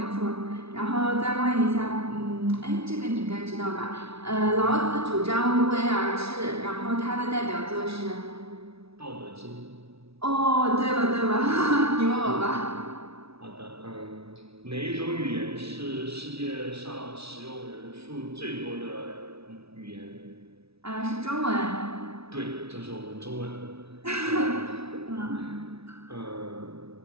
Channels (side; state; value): left; late; 0.77 ms